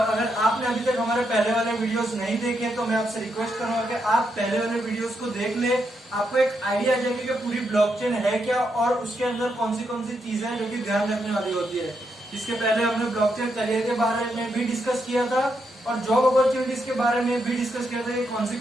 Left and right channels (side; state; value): both; normal; correlation 0.81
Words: अगर आपने अभी तक हमारे पहले वाले वीडियोस नहीं देखे तो मैं आपसे रिक्वेस्ट करूंगा कि आप पहले वाले वीडियोस को देख ले। आपको एक आइडिया आ जाएगी कि पूरी ब्लॉकचेन है क्या और उसके अंदर कौन सी चीजें हैं जो कि ध्यान रखने वाली होती है। इसके पहले हमने ब्लॉकचेन करियर के बारे में भी डिस्कस किया था और जॉब अपॉर्चुनिटीज के बारे में भी डिस्कस किया था कि